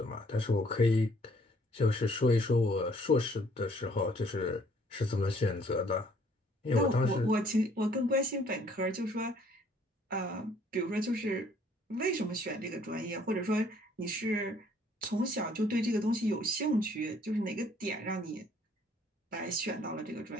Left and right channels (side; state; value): both; normal; correlation 0.61